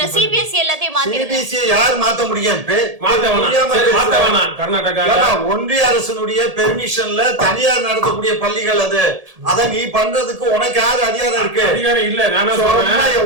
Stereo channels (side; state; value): left; late; 1.7 ms